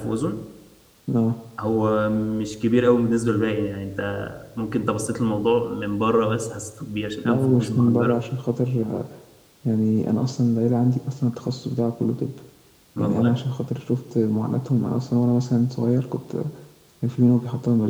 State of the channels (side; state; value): both; identical; correlation 1.00